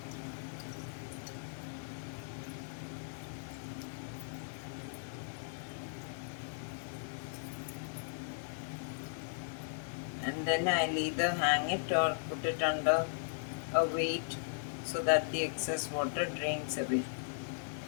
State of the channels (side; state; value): right; silent; digital silence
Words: And then I'll either hang it or put it under a weight so that the excess water drains away.